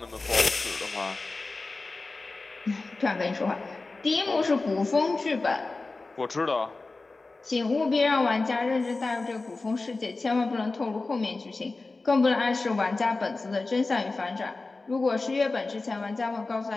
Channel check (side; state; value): right; quieter; 3.5 dB